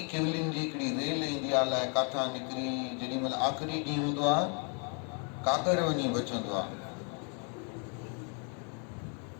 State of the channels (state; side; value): quieter; right; 39.5 dB